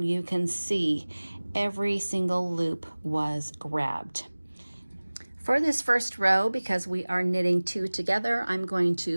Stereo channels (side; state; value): both; inverted; correlation -1.00